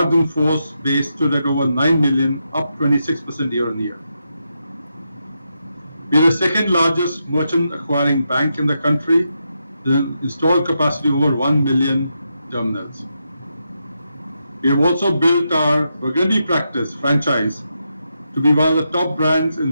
in force base stood at over 9 million, up 26% year on year. We are the second largest merchant acquiring bank in the country, with an installed capacity over 1 million terminals. We have also built our Burgundy practice franchise to be one of the top brands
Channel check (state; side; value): inverted; both; correlation -0.84